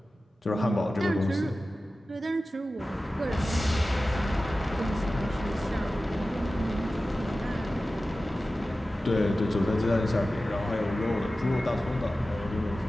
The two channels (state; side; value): normal; both; correlation 0.95